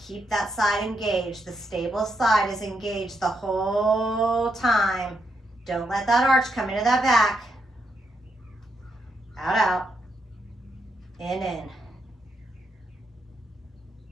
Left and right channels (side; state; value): both; normal; correlation 0.80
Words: keep that side engaged. The stable side is engaged the whole time. Don't let that arch come into that back. Out, out. In.